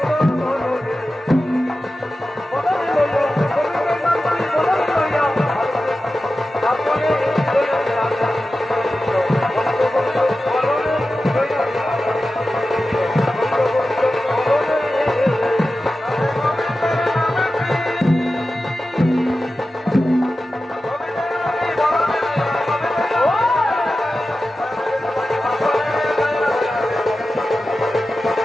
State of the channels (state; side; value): normal; both; correlation 0.94